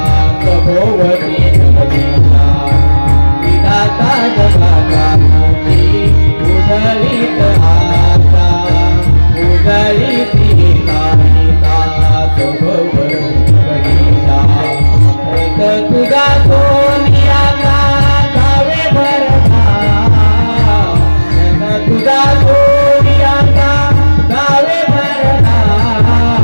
भोवती जगदीता विधाता जगाता उदरित आशा उदरित हिता भोवती जगदीता तुझा सोनियाचा गावे भरता तुझा सोनियाचा गावे भरता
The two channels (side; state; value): both; inverted; correlation -1.00